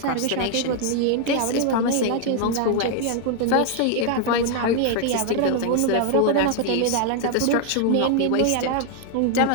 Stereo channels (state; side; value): different; both; correlation 0.00